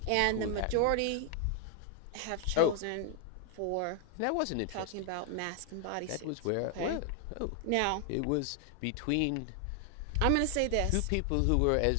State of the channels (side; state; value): both; different; correlation 0.00